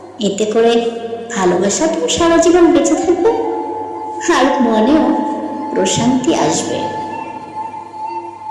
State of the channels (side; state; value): both; identical; correlation 1.00